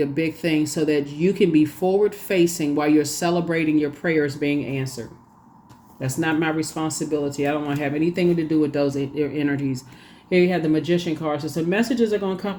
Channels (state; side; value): identical; both; correlation 1.00